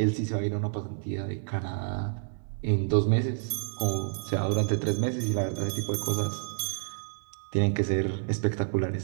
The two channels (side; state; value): left; silent; 59 dB below the other